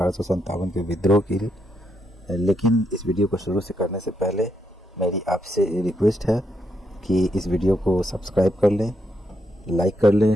के विद्रोह की। लेकिन इस वीडियो को शुरू से करने से पहले मेरी आपसे रिक्वेस्ट है कि इस वीडियो को सब्सक्राइब कर लें, लाइक कर लें,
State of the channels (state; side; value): normal; both; correlation 0.80